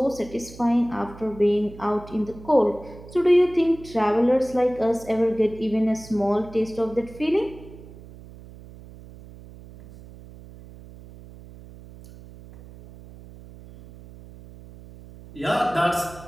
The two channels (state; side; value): noise; right; hum, 18 dB below the sound